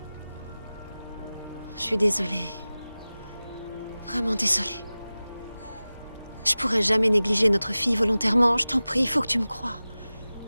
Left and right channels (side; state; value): both; inverted; correlation -0.97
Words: Je suis désolée. Vraiment désolée. Je pourrais jamais négliger notre fille volontairement. Je t'en prie, il faut que tu me crois.